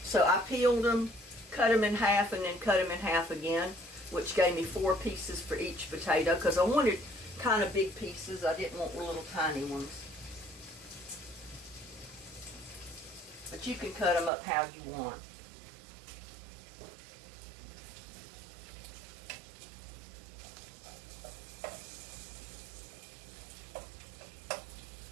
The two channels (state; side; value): drops out; left; at 14.3 s